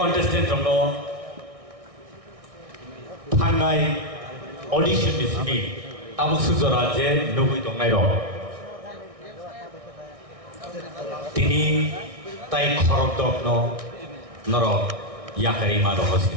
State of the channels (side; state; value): left; late; 1.6 ms